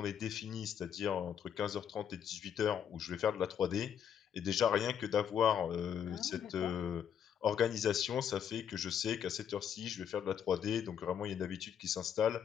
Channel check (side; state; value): right; quieter; 8.6 dB